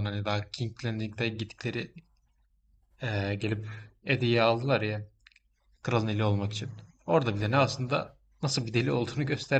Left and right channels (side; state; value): both; identical; correlation 1.00